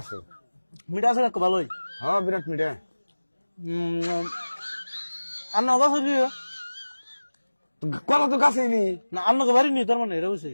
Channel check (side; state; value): both; inverted; correlation -1.00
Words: মিঠা আছে কাকু ভালোই। হ্যাঁ বিরাট মিঠা। আন্না গাছ হইলি কলা তো গাছে নি না? আন্নাকে বাড়ি নি তার মানে এটা বুঝছি।